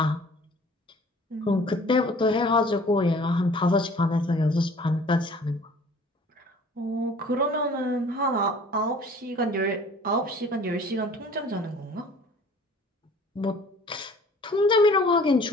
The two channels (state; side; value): normal; both; correlation 0.50